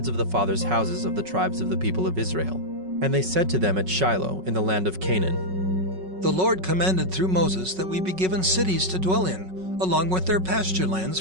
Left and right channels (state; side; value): late; left; 5.4 ms